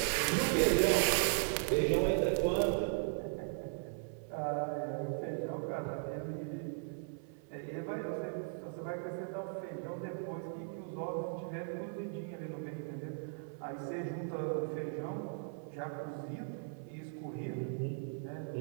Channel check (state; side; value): silent; left; 53 dB below the other